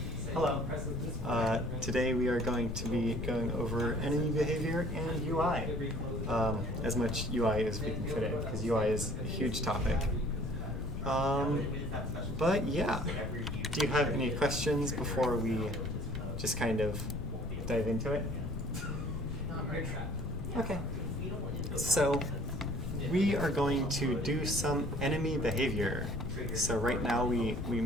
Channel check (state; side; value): noise; left; rumble, 5 dB below the sound